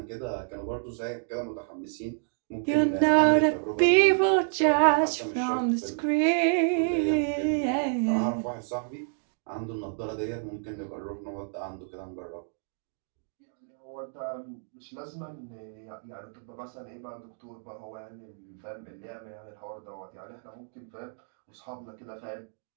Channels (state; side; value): silent; left; digital silence